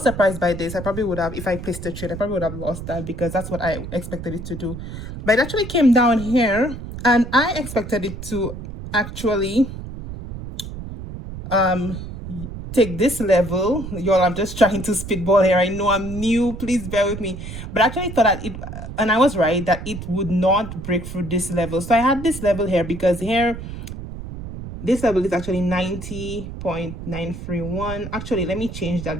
surprised by this. I probably would have, if I placed a trade, I probably would have lost that because that's what I expected it to do. But it actually came down here and I expected it to actually take this level. Y'all, I'm just trying to spitball here. I know I'm new, please bear with me, but I actually thought that and I was right, that it would not break through this level. So I had this level here because here this level is actually 90.931. Actually, let me change that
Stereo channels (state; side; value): noise; right; rumble, 9 dB below the sound